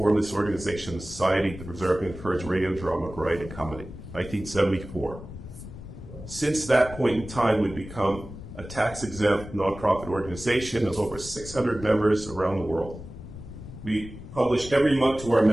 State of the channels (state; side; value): noise; left; rumble, 13 dB below the sound